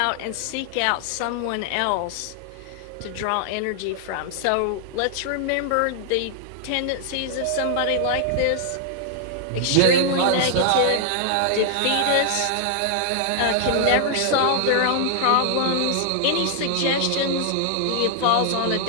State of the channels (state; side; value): different; both; correlation 0.00